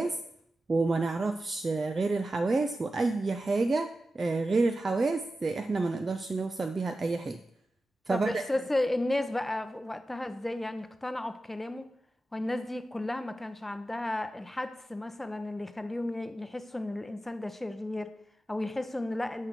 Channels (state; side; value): normal; both; correlation 0.93